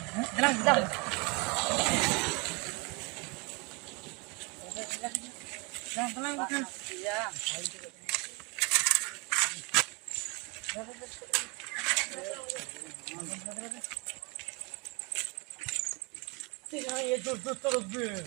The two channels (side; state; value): left; quieter; 29.9 dB